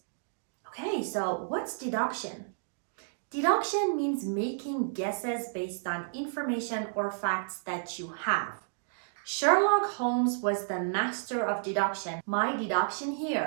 Okay, so what's deduction? Deduction means making guesses based on information or facts that you have. Sherlock Holmes was the master of deduction. My deduction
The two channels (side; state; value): left; silent; digital silence